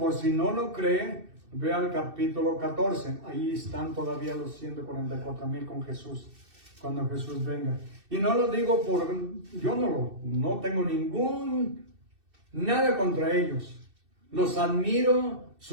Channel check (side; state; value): left; late; 2.6 ms